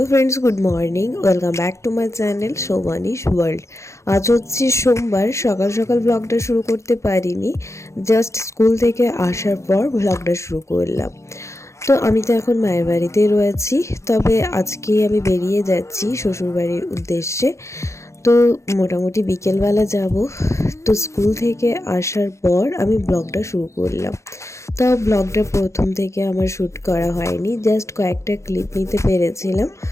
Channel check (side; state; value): right; late; 0.14 ms